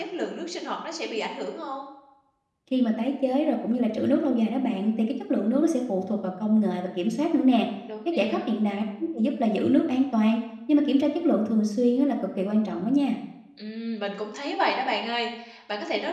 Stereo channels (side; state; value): both; identical; correlation 1.00